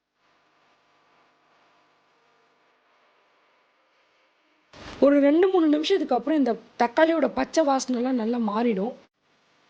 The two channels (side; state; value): both; identical; correlation 1.00